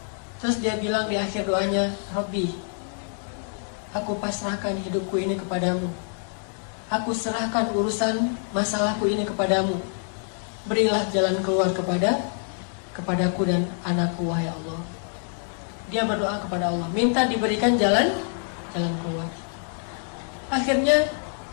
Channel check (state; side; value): silent; right; 57 dB below the other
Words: Terus dia bilang di akhir doanya, Rabbi, aku pasrahkan hidupku ini kepadamu. Aku serahkan urusan masalahku ini kepadamu. Berilah jalan keluar kepadaku dan anakku, wahai Allah. Dia berdoa kepada Allah, minta diberikan jalan keluar. Akhirnya